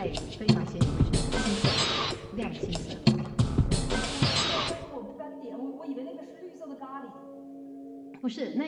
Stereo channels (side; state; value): both; identical; correlation 1.00